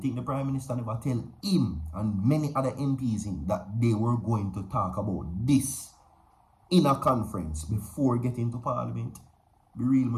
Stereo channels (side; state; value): both; identical; correlation 1.00